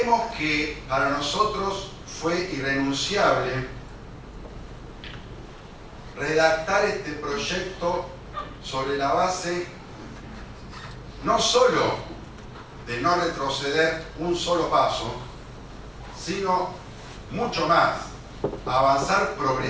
que para nosotros fue irrenunciable redactar este proyecto sobre la base no solo de no retroceder un solo paso, sino mucho más, avanzar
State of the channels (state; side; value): identical; both; correlation 1.00